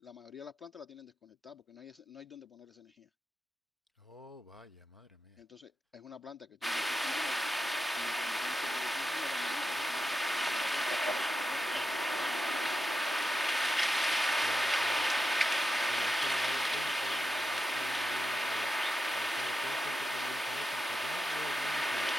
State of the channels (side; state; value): both; normal; correlation 0.89